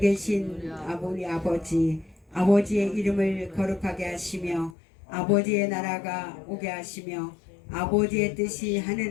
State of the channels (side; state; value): right; drops out; at 4.8 s